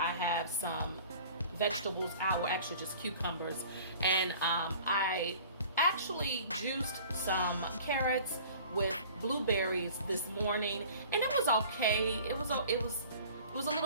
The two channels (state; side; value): inverted; both; correlation -0.47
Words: have some vegetables out, or actually just cucumbers, and I actually juiced some carrots with blueberries this morning, and it was okay. It was a